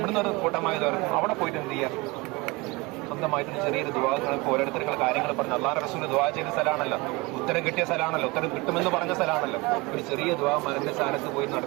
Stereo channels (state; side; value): quieter; left; 24.6 dB